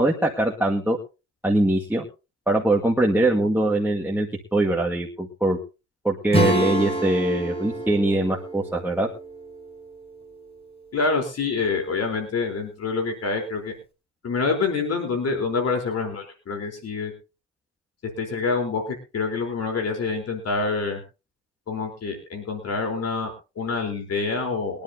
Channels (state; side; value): normal; both; correlation 0.47